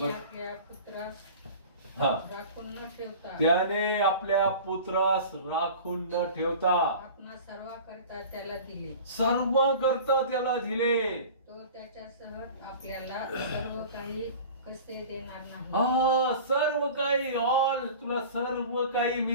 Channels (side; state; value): both; inverted; correlation -0.39